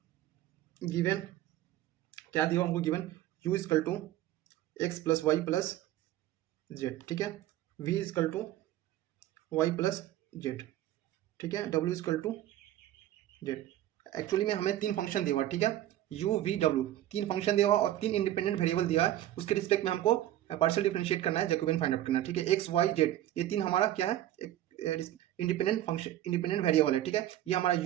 Given क्या दिया हमको? Given u equal to x plus y plus z. ठीक है, v equal to y plus z. ठीक है, w इजकल टू जेड. एक्चुअली में हमें 3 फंक्शन दिया हुआ. ठीक है, u v w 3 फंक्शन दिया हुआ और 3 इंडिपेंडेंट वेरिएबल दिया है. उसके रिस्पेक्ट में हमको पार्शियल डिफरेंशिएट करना है, जैकोबियन फाइंड आउट करना है. ठीक है, x y z ये 3 हमारा क्या है? एक इंडिपेंडेंट फंक्शन, इंडिपेंडेंट वेरिएबल है. ठीक है, ये हमारा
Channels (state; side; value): quieter; left; 13.4 dB